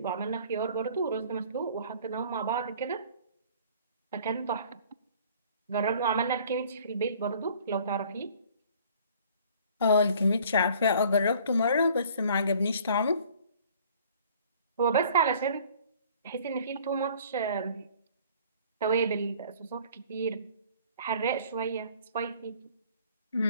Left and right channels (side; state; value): both; inverted; correlation -0.53